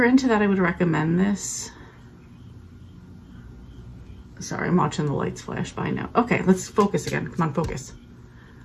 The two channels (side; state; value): both; identical; correlation 1.00